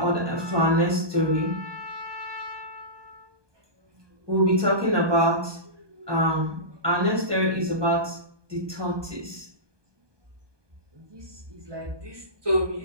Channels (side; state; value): left; late; 1.2 ms